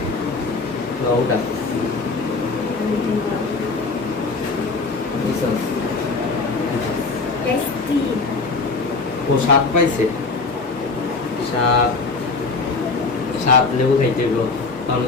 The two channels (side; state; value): right; quieter; 4.0 dB